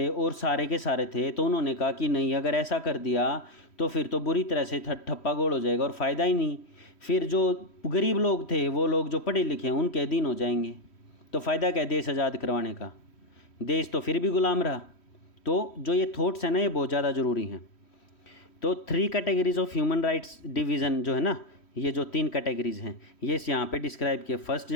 और सारे के सारे थे, तो उन्होंने कहा कि नहीं, अगर ऐसा कर दिया तो फिर तो बुरी तरह से ठप्पा गोल हो जाएगा और फ़ायदा ही नहीं। फिर जो गरीब लोग थे, वो लोग जो पढ़े लिखे हैं, उनके अधीन हो जाएंगे, तो फ़ायदा क्या है देश आज़ाद करवाने का? देश तो फिर भी गुलाम रहा। तो जो ये थॉट्स हैं ना, ये बहुत ज़्यादा ज़रूरी हैं। तो 3 categories of human rights division जो है ना, ये जो 3 कैटेगरीज हैं, ये यहाँ पे डिस्क्राइब किए। First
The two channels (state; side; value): late; right; 3.1 ms